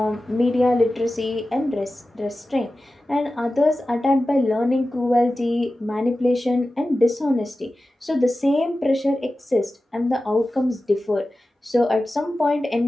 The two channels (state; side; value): normal; both; correlation 0.94